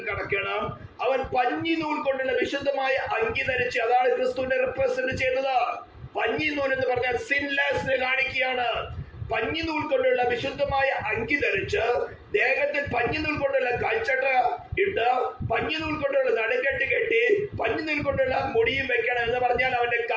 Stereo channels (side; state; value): both; identical; correlation 1.00